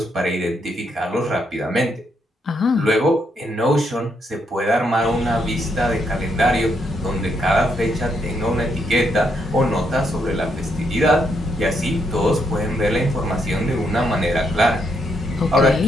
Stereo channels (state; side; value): normal; both; correlation 0.76